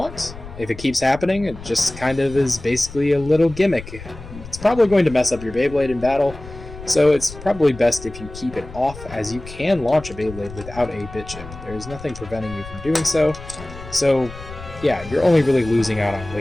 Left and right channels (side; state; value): left; noise; rumble, 15 dB below the sound